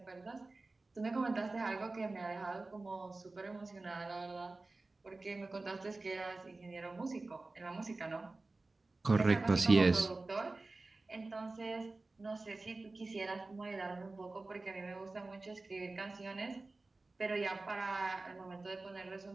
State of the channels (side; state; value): left; quieter; 3.3 dB